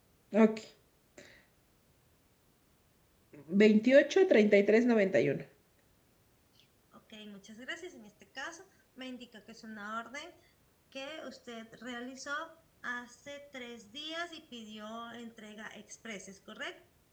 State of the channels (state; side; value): identical; both; correlation 1.00